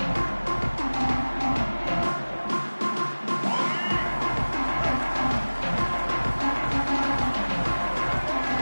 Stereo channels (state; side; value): inverted; both; correlation -1.00